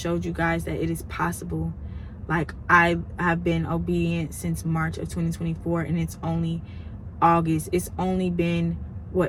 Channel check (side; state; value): both; identical; correlation 1.00